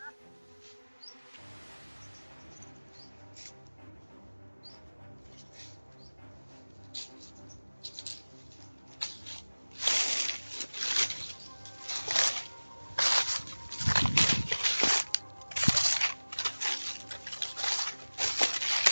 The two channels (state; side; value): inverted; both; correlation -1.00